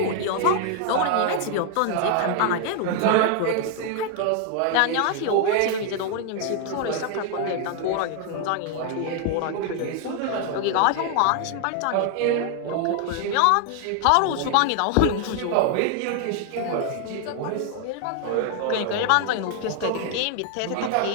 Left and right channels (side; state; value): both; different; correlation 0.00